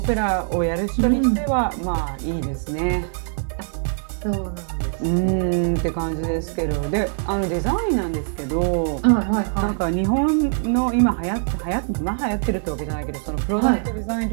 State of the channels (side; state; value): left; silent; 61 dB below the other